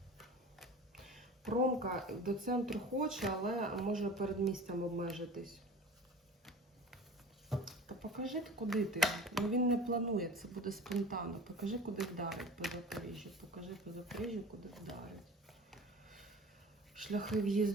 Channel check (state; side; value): normal; both; correlation 0.39